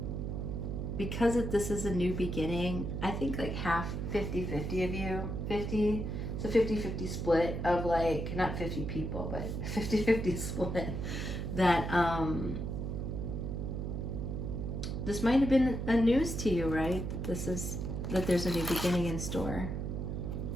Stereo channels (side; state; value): right; noise; hum, 3 dB below the sound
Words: because this is a new beginning, I think like half, 50-50 of you, 50, so 50-50 split of like, not 50 people, but 50-50 split, that this might have been a news to you, right? That there's a new beginning in store.